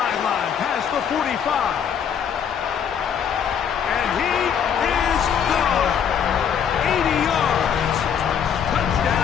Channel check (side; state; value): right; quieter; 7.9 dB